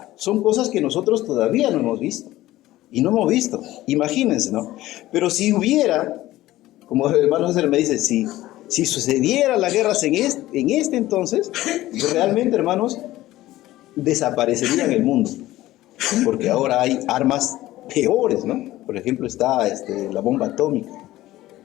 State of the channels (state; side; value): quieter; right; 16.0 dB